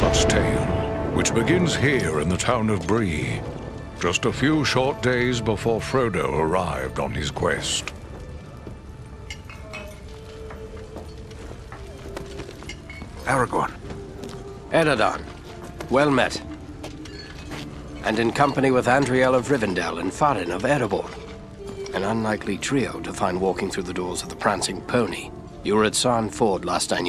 tale, which begins here in the town of Bree, just a few short days before Frodo arrived on his quest. Aragorn. Eredon, well met. And in company with Andriel of Rivendell and Farin of Erebor. An unlikely trio to find walking through the doors of the Prancing Pony. You were at Sarn Ford last I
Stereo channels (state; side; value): identical; both; correlation 1.00